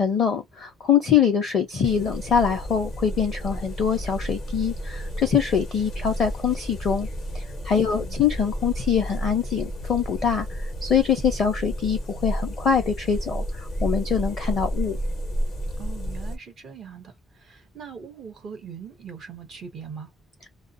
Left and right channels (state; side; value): quieter; right; 5.5 dB